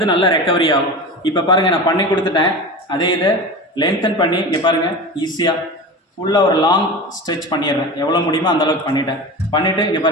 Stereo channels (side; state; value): both; normal; correlation 0.29